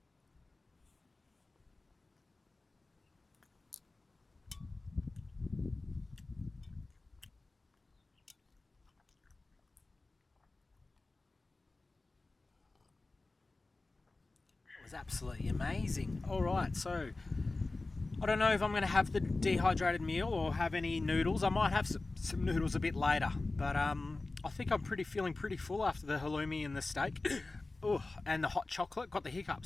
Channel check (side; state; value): right; quieter; 3.3 dB